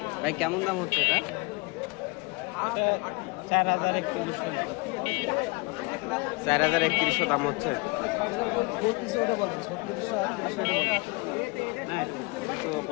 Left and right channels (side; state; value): right; quieter; 27.7 dB